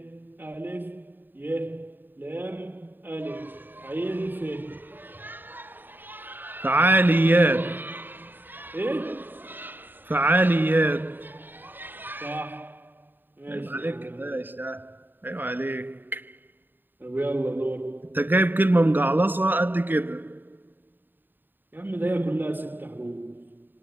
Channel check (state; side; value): late; left; 0.092 ms